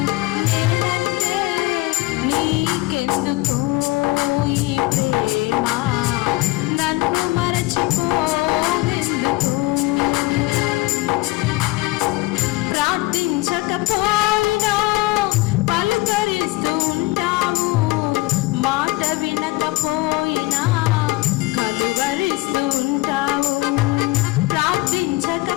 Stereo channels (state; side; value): quieter; right; 20.0 dB